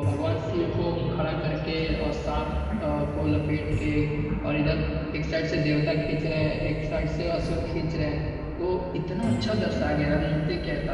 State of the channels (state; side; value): identical; both; correlation 1.00